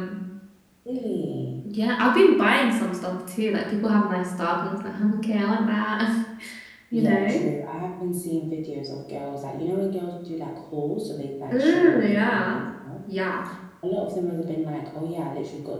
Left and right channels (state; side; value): identical; both; correlation 1.00